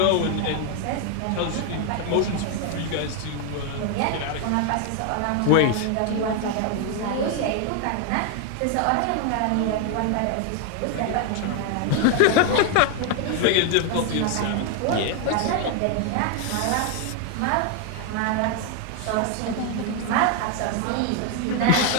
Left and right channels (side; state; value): both; different; correlation 0.00